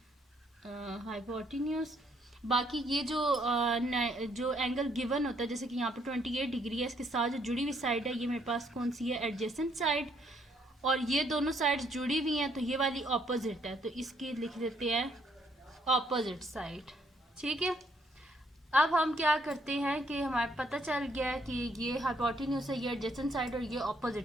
हाइपोटेन्यूज। बाकी ये जो एंगल गिवन होता है, जैसे कि यहाँ पे 28 डिग्री है, इसके साथ जो जुड़ी हुई साइड है ये मेरे पास कौन सी है, एडजेसेंट साइड। और ये दोनों साइड्स जुड़ी हुई हैं तो ये वाली ऑपोजिट है, तो इसकी लिख देते हैं ऑपोजिट साइड, ठीक है। अब हम क्या करते हैं कि हमारे पता चल गया है कि ये हाइपोटेन्यूज है, ये एडजेसेंट साइड और ये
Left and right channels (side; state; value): both; normal; correlation 0.69